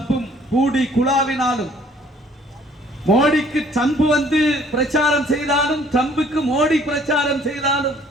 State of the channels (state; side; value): normal; both; correlation 0.58